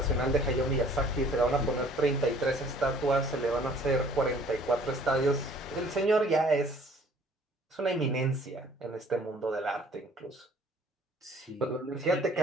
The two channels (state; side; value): normal; both; correlation 0.56